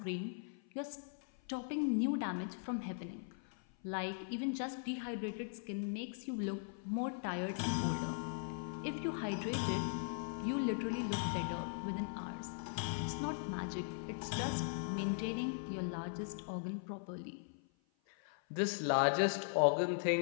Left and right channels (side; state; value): right; silent; 51 dB below the other